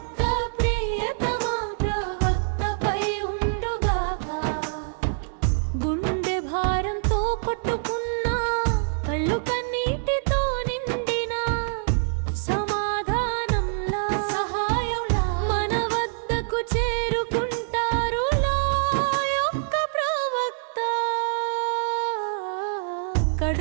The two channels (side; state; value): left; silent; digital silence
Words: ప్రియతమ ప్రవక్తపై ఉండుగాక. గుండె భారంతో కొట్టుకున్నా, కళ్ళు కన్నీటితో నిండిన సమాధానంలా, సహాయంలా మన వద్దకు చేరుకుంటారు లా యొక్క ప్రవక్త.